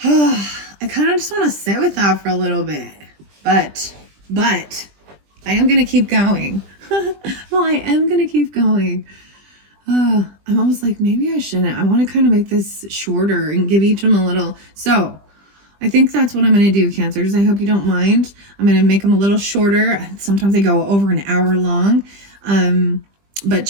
I kind of just want to sit with that for a little bit. But I am going to keep going. Well, I am going to keep going. I'm almost like, maybe I shouldn't. I want to kind of make this shorter and give each of them a little. So I think that's what I'm going to do, Cancers. I hope you don't mind. I'm going to make them a little shorter. Sometimes they go over an hour long. But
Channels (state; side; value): late; left; 20 ms